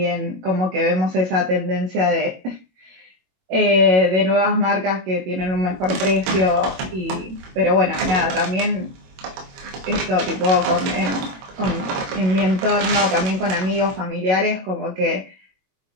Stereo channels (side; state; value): left; late; 22 ms